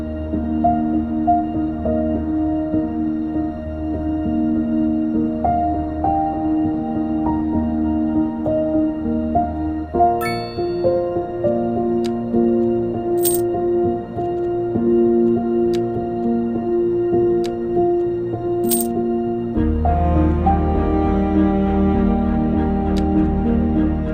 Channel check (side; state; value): both; identical; correlation 1.00